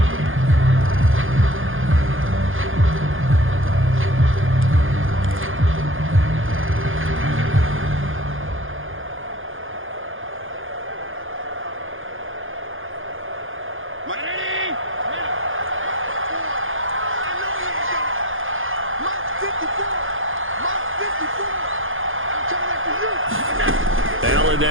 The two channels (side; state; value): left; late; 0.59 ms